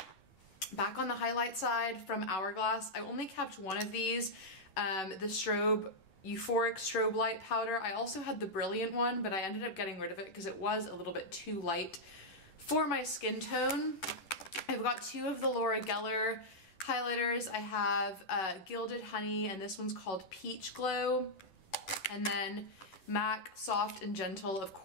Back on the highlight side from Hourglass, I only kept one of these, the Euphoric Strobe Light Powder. I also had the Brilliant one, but I ended up getting rid of it because it was a little bit too light for my skin tone. I've got 2 of the Laura Geller highlighters. I have Gilded Honey, and this one's called Peach Glow. And then MAC Soft and Gentle, of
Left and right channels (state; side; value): late; right; 10 ms